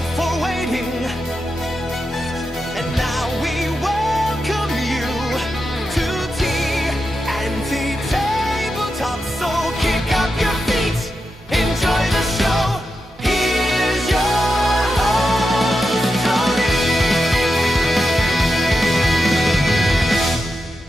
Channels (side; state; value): both; normal; correlation 0.88